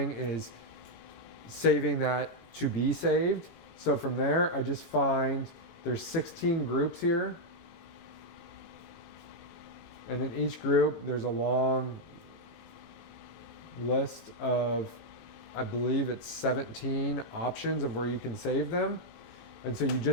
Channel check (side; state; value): both; normal; correlation -0.01